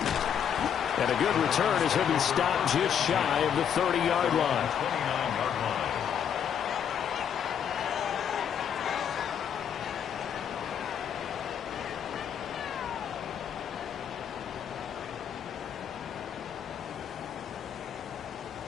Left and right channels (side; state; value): right; quieter; 8.4 dB